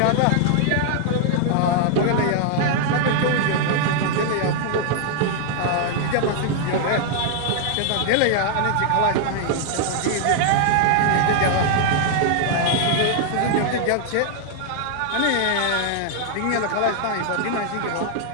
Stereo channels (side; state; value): both; different; correlation 0.00